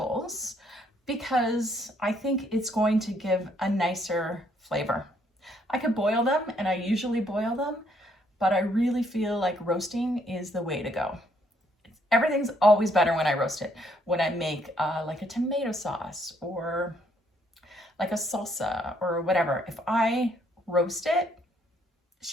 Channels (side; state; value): both; normal; correlation 0.69